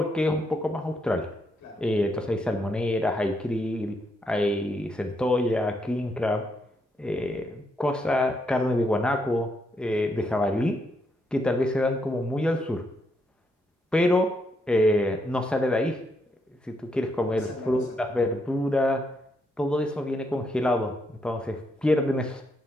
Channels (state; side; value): normal; both; correlation 0.78